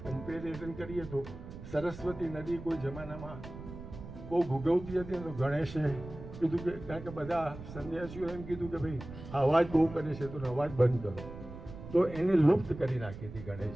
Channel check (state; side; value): noise; right; rumble, 13 dB below the sound